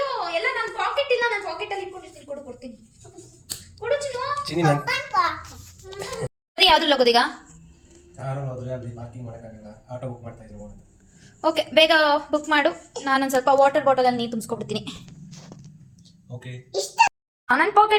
ಎಲ್ಲ ನನ್ನ ಪಾಕೆಟ್ ಇಲ್ಲ, ನನ್ನ ಪಾಕೆಟಲ್ಲಿ ಇಟ್ಕೊಂಡಿರ್ತೀನಿ. ಕೊಡು, ಕೊಡ್ತೀನಿ. ಕೊಡು ಚಿನ್ನು. ಯಾವ್ದ್ರಲ್ಲಿ ಹೋಗೋದೀಗ? ಕಾರಲ್ಲಿ ಹೋದ್ರೆ ಅಲ್ಲಿ ಪಾರ್ಕಿಂಗ್ ಮಾಡೋಕ್ಕಾಗಲ್ಲ, ಆಟೋ ಬುಕ್ ಮಾಡ್ತಾ ಇದ್ರು. ಓಕೆ, ಬೇಗ ಬುಕ್ ಮಾಡು. ನಾನೊಂದು ಸ್ವಲ್ಪ ವಾಟರ್ ಬಾಟಲಲ್ಲಿ ನೀರು ತುಂಬಿಸ್ಕೊಬಿಡ್ತೀನಿ. ಓಕೆ. ನನ್ನ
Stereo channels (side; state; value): both; identical; correlation 1.00